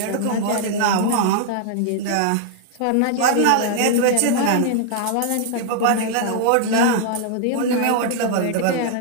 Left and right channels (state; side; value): different; both; correlation 0.00